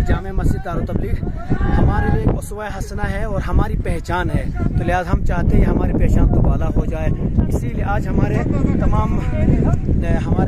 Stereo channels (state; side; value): identical; both; correlation 1.00